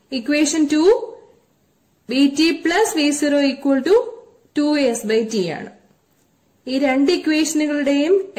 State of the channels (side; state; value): both; identical; correlation 1.00